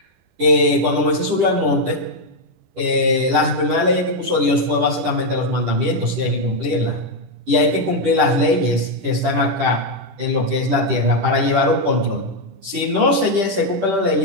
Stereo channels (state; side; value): late; left; 10 ms